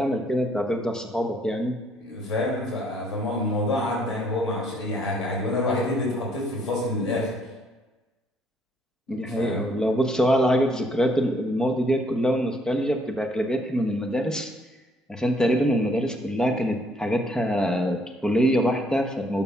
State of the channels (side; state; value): both; normal; correlation 0.66